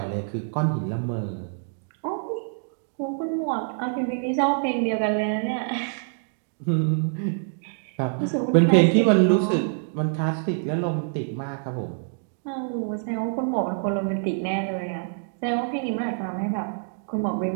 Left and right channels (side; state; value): left; silent; digital silence